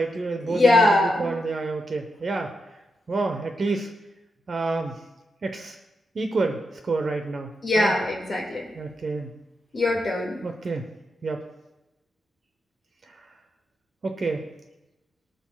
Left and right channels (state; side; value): normal; both; correlation 0.85